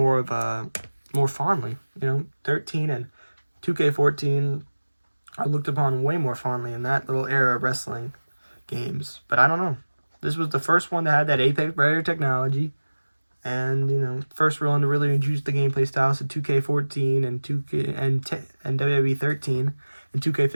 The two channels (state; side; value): inverted; both; correlation -1.00